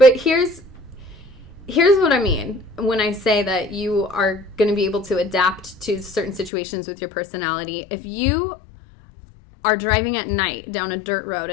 here's what I mean when I say that you are going to be able to adapt to certain situations with your personality. If you are driving at night down a dirt road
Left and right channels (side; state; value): right; drops out; at 6.5 s